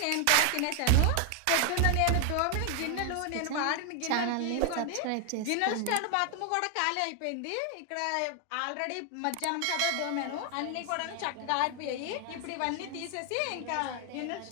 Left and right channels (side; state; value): both; different; correlation 0.00